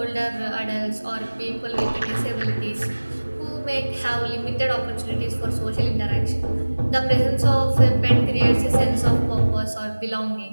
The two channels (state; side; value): inverted; both; correlation -1.00